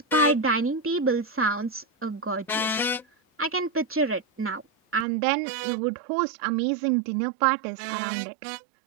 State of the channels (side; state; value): left; drops out; at 5.1 s